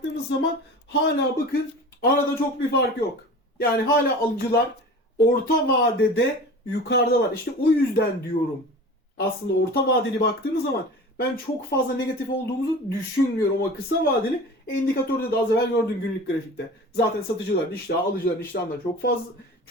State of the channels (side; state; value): both; normal; correlation 0.37